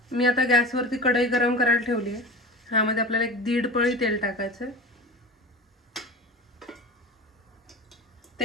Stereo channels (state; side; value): normal; both; correlation 0.33